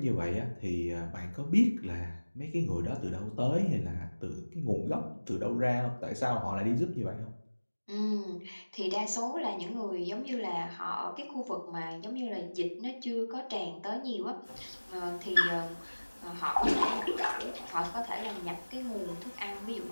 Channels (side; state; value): both; inverted; correlation -1.00